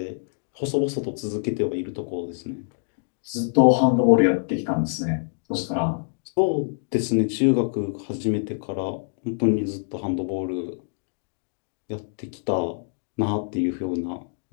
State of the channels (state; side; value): silent; right; digital silence